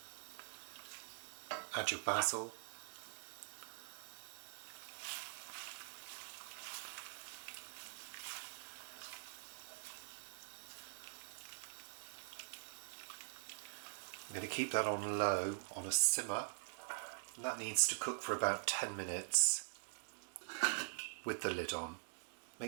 Add your basil. I'm going to keep that on low, on a simmer, and that needs to cook for about 10 minutes with the lid on.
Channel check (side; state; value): left; silent; digital silence